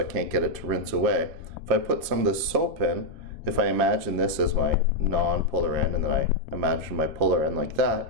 can't get it to rinse away. If I put some of this soap in, if I imagine this as my non-polar end, and then I imagine my polar end like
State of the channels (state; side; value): late; left; 2.8 ms